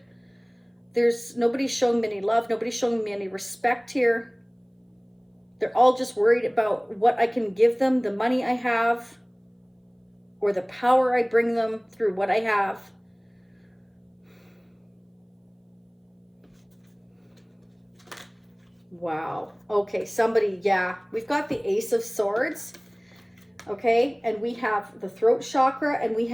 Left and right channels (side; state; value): both; identical; correlation 1.00